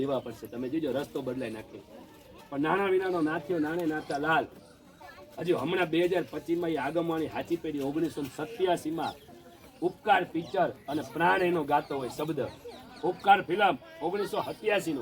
પડશે. તમે જોજો રસ્તો બદલાઈ નાખે. પણ નાના વિનાનો નાથ્યો નાણે નાતા લાલ. હજુ હમણાં 2025માં એ આગમવાની હાચી પેઢી 1987માં ઉપકાર પિક્ચર અને પ્રાણ એનો ગાતો હોય શબ્દ. ઉપકાર ફિલ્મ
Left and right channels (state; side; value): identical; both; correlation 1.00